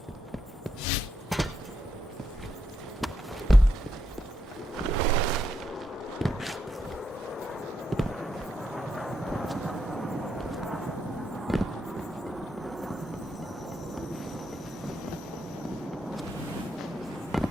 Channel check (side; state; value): both; normal; correlation 0.80